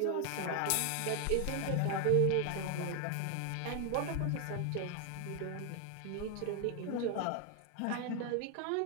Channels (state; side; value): different; both; correlation 0.00